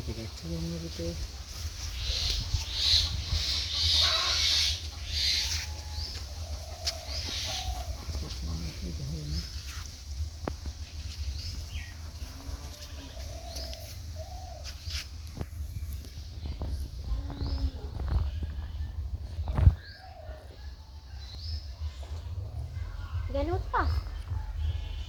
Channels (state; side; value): identical; both; correlation 1.00